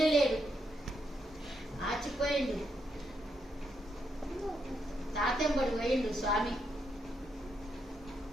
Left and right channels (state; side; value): normal; both; correlation 0.79